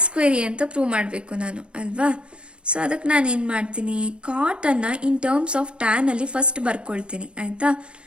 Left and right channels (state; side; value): late; left; 0.056 ms